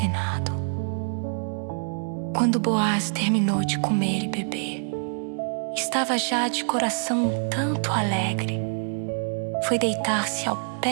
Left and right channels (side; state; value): left; silent; 61 dB below the other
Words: Quando Boaz terminou de comer e beber, estava já de coração um tanto alegre. Foi deitar-se ao